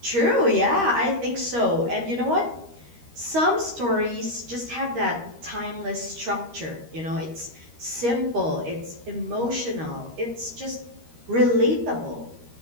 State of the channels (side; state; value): left; late; 13 ms